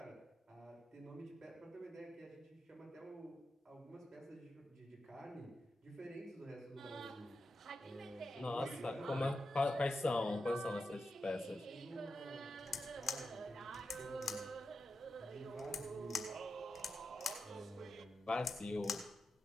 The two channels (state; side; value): normal; both; correlation 0.88